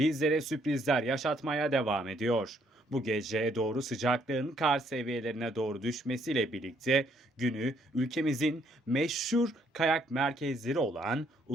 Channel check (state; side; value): normal; both; correlation 0.69